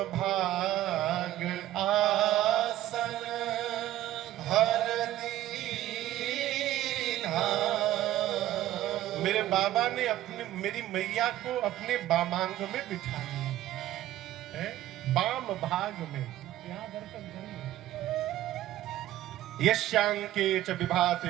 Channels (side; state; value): left; quieter; 14.1 dB